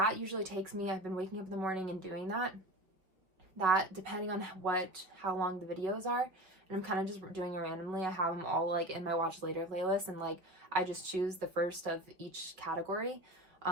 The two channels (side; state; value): left; late; 5.2 ms